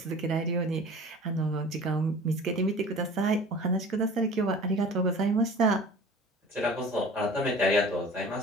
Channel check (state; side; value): normal; both; correlation 0.43